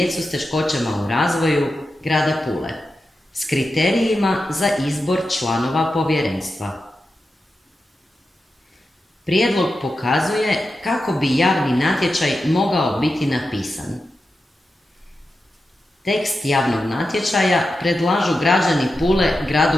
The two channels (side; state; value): both; normal; correlation 0.90